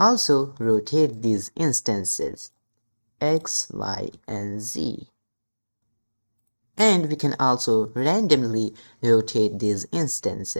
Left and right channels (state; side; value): inverted; both; correlation -1.00